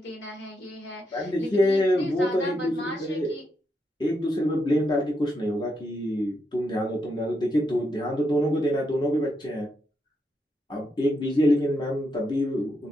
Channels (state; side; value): normal; both; correlation 0.82